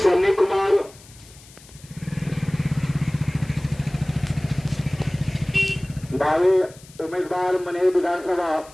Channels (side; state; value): left; noise; hiss, 23 dB below the sound